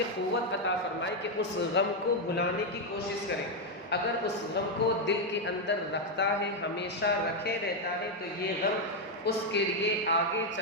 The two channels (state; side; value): normal; both; correlation 0.02